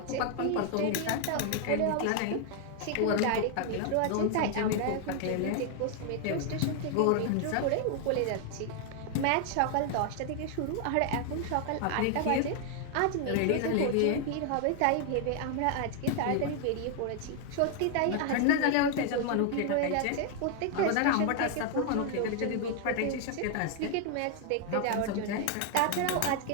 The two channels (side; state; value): both; different; correlation 0.00